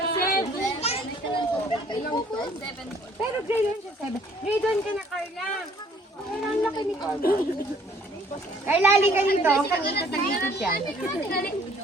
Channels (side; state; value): both; normal; correlation 0.59